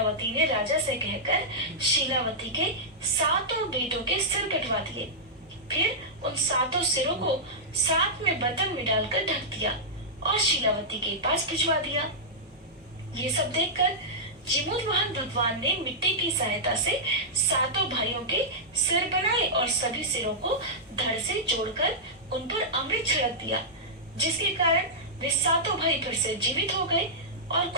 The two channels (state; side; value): normal; both; correlation -0.10